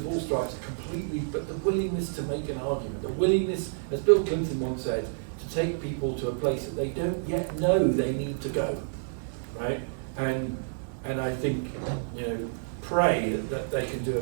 all stripes are completely, but the willingness to make an argument, the willingness, as Bill Clinton once said, to take people to a place that they don't yet know they need to go, right? And and I think, pray that they can do a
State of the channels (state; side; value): silent; left; digital silence